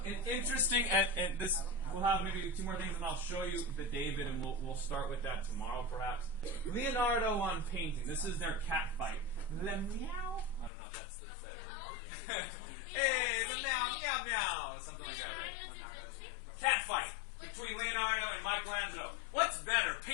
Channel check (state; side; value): drops out; right; at 10.7 s